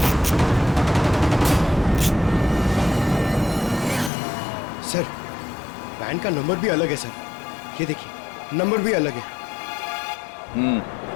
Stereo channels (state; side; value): drops out; right; at 4.1 s